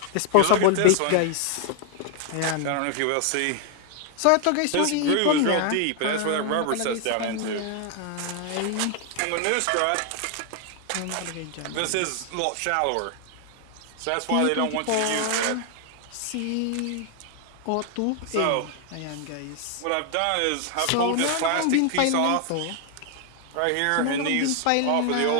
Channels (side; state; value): both; different; correlation 0.00